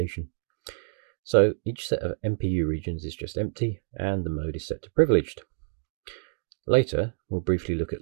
So each set of MPU regions is just empty and the mode is set to privileged. Later, we'll briefly look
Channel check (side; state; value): left; silent; digital silence